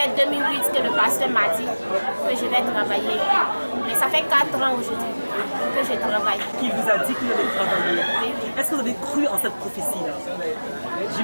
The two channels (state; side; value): inverted; both; correlation -1.00